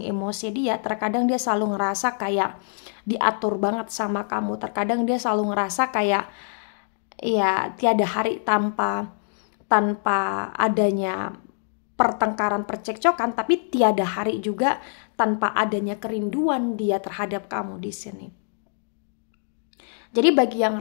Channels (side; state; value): right; silent; digital silence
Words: emosi dia. Terkadang dia selalu ngerasa kayak diatur banget sama kamu. Terkadang dia selalu ngerasa kayak ya tiada hari tanpa adanya pertengkaran, percekcokan, tapi tiada hari juga tanpa adanya kerinduan dia terhadap kamu di sini. Jadi bagi yang